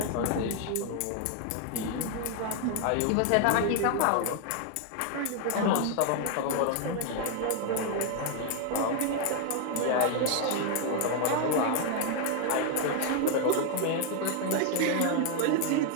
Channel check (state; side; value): different; both; correlation 0.00